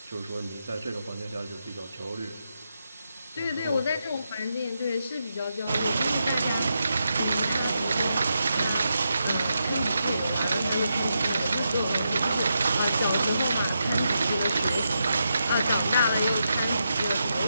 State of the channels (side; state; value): both; inverted; correlation -0.85